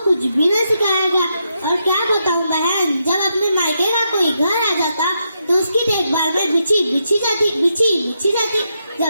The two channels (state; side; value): inverted; both; correlation -0.82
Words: कुछ भी न सिखाया गया। और क्या बताऊं बहन, जब अपने मायके का कोई घर आ जाता तो उसकी देखभाल में बिछी बिछी जाती।